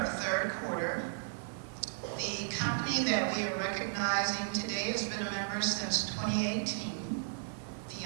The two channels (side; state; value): left; silent; digital silence